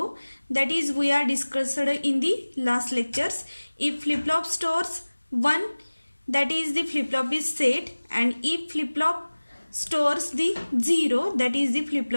that is we are discussed in the last lectures. If flip-flop stores 1, that is the flip-flop is set, and if flip-flop stores the 0, that is the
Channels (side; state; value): both; inverted; correlation -1.00